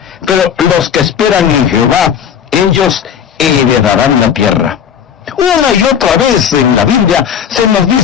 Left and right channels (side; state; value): right; quieter; 8.1 dB